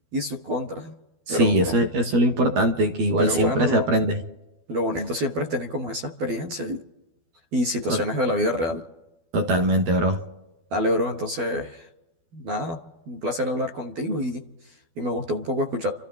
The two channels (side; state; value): left; late; 12 ms